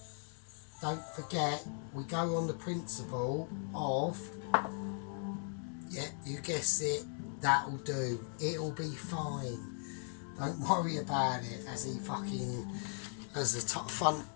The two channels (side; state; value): right; silent; 52 dB below the other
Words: we go on the principle of, yeah, you guessed it, that'll do. It'll be fine. Don't worry about it as the front